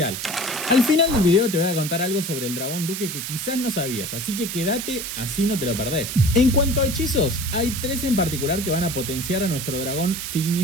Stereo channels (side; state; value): right; noise; hiss, 5 dB below the sound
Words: Al final del video te voy a contar algo sobre el dragón duque que quizás no sabías, así que quédate, así no te lo perdés. En cuanto a hechizos, hay 3 en particular que van a potenciar a nuestro dragón